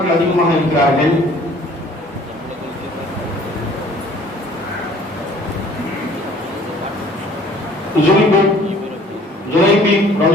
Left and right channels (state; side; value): normal; both; correlation 0.54